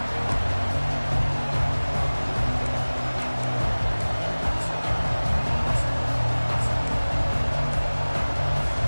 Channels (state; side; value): inverted; both; correlation -1.00